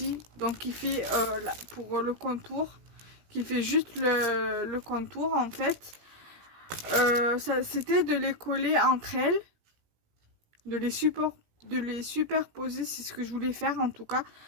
donc qui fait pour le contour, qui fait juste le contour en fait. Ça c'était de les coller entre elles, de les superposer, c'est ce que je voulais faire en tout cas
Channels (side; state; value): left; late; 17 ms